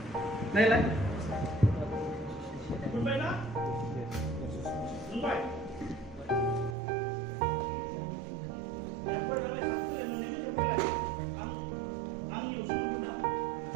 नायलाय मोनबाय ना मोनबाय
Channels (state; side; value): drops out; left; at 6.8 s